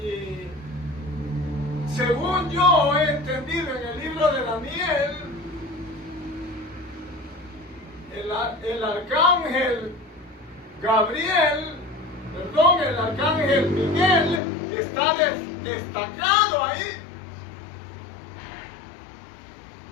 según yo he entendido en el libro de Daniel, el arcángel Gabriel, el arcángel Miguel está destacado ahí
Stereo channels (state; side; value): drops out; right; at 14.4 s